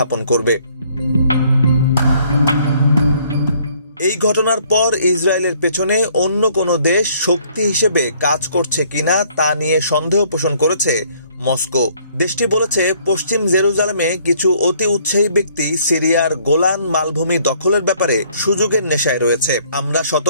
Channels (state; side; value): inverted; both; correlation -0.62